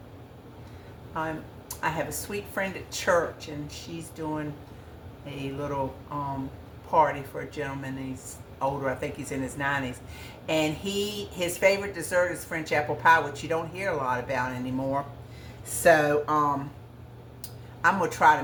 I have a sweet friend at church, and she's doing a little party for a gentleman. He's older. I think he's in his 90s, and his favorite dessert is French apple pie, which you don't hear a lot about anymore. So I'm gonna try to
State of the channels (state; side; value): identical; both; correlation 1.00